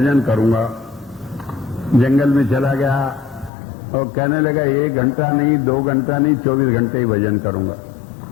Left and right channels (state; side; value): drops out; right; at 3.5 s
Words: करूंगा। जंगल में चला गया और कहने लगा 1 घंटा नहीं, 2 घंटा नहीं, 24 घंटे ही भजन करूंगा।